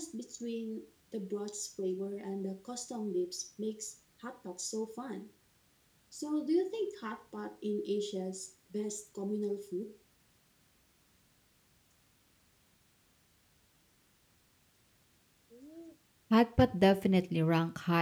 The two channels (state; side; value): identical; both; correlation 1.00